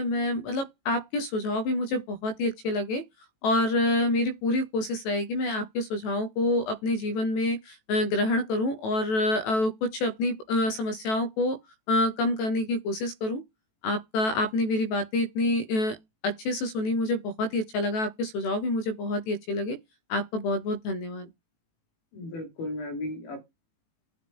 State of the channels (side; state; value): right; late; 18 ms